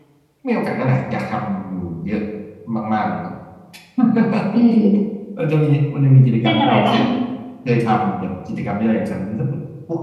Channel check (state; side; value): identical; both; correlation 1.00